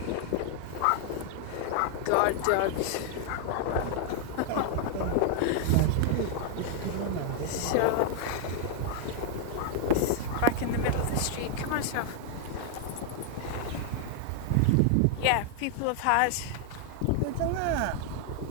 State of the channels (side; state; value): both; different; correlation 0.00